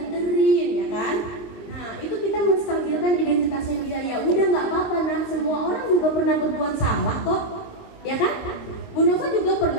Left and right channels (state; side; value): late; right; 22 ms